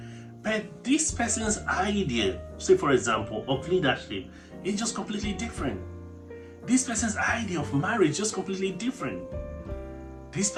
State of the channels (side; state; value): both; identical; correlation 1.00